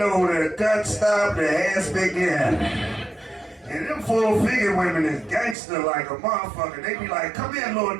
where the gut stopped, the ass began. And them full-figure women is gangster like a motherfucker. They be like, come here, little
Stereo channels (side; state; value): left; drops out; at 5.6 s